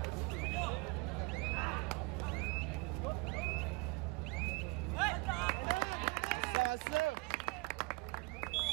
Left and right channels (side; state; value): left; quieter; 26.5 dB